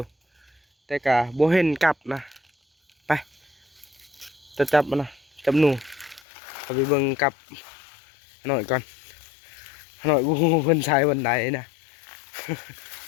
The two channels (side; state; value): right; drops out; at 6.2 s